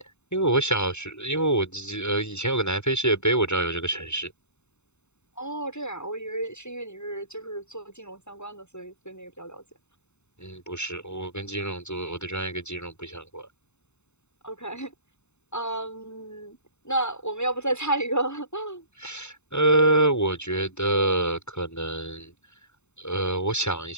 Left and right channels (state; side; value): late; right; 0.82 ms